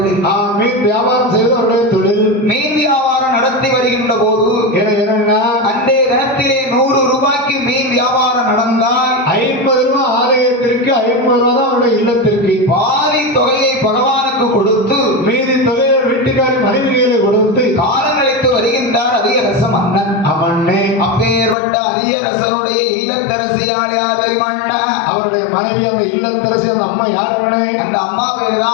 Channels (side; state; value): right; drops out; at 21.6 s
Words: மீன் வியாபாரம் செய்வது அவருடைய தொழில். மீன் வியாபாரம் நடத்தி வருகின்ற போது என்னன்னா அன்றைய தினத்திலே 100 ரூபாய்க்கு மீன் வியாபாரம் நடந்தால் 50 ரூபாய் ஆலயத்திற்கு 50 ரூபாய் தான் அவருடைய இல்லத்திற்கு. பாதி தொகையை பகவானுக்கு கொடுத்து மீதி தொகையை வீட்டுக்காரி மனைவிகளை கொடுத்து காலம் கழித்து வருகின்றார் அதிகரச மன்னன். அவனே அப்பேற்பட்ட அதிகரசனுடைய இல்லத்தரசியால் யாரை மன்னா? அவருடைய மனைவி அந்த இல்லத்தரசி அந்த அம்மா யார் அண்ணே? அந்த அம்மா பேர்